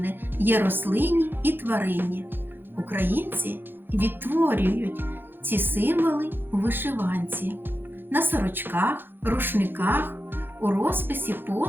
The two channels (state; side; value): late; left; 0.099 ms